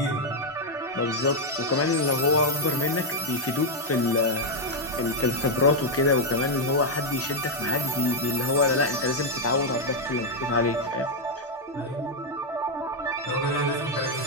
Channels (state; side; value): normal; both; correlation 0.01